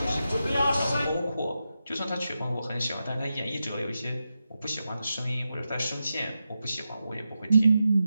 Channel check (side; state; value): both; inverted; correlation -0.89